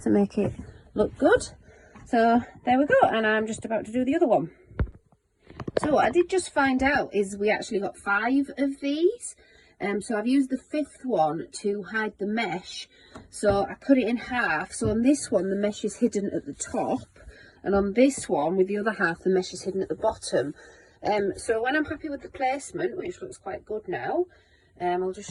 to make it look good. So there we go, and I'm just about to do the other one. So what I did just find out is we actually got 5 of these. So I've used the 5th one to hide the mesh. So I cut it in half. So on this one, the mesh is hidden at the top. And on this one, with the other half, the mesh is hidden at the bottom. So when I'm happy with the placement, which looks quite good now, I'll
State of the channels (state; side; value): identical; both; correlation 1.00